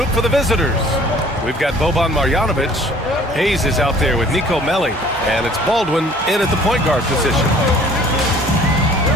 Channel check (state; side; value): normal; both; correlation 0.53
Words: for the visitors. We've got Boban Marjanovic. Hayes is out there with Nico Melli. And it's Baldwin in at the point guard position.